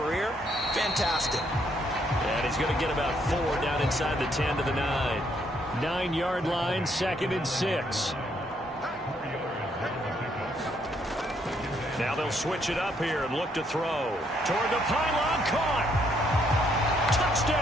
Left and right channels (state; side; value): normal; both; correlation 0.71